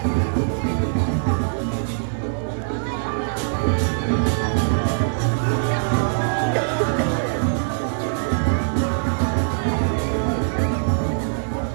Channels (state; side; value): silent; left; digital silence